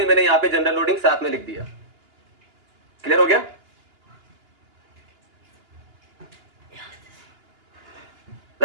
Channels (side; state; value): left; late; 2.9 ms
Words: मैंने यहाँ पे जनरल लोडिंग साथ में लिख दिया। क्लियर हो गया,